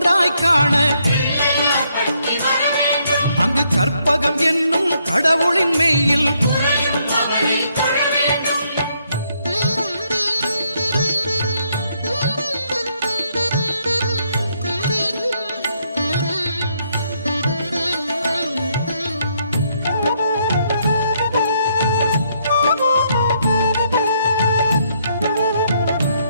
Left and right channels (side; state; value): both; inverted; correlation -0.73